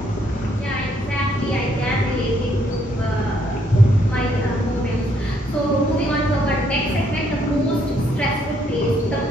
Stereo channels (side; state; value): both; normal; correlation 0.70